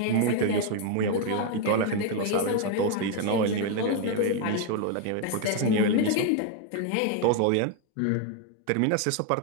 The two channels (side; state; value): both; different; correlation 0.01